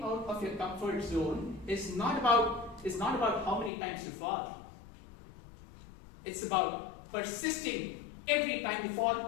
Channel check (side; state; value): right; drops out; at 3.7 s